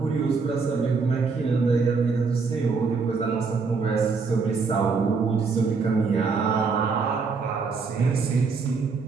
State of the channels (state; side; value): quieter; left; 4.8 dB